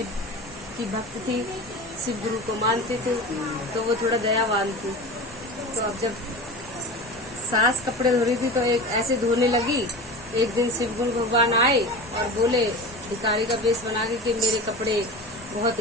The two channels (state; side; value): normal; both; correlation 0.31